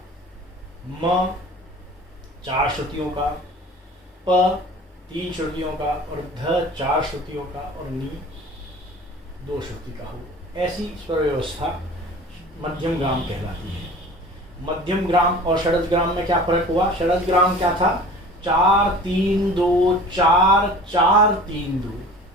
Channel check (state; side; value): normal; both; correlation 0.42